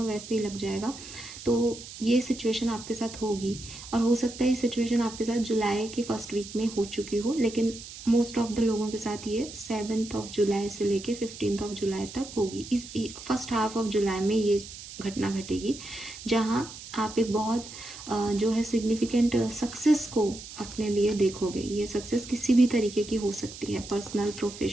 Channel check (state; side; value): noise; right; hiss, 14 dB below the sound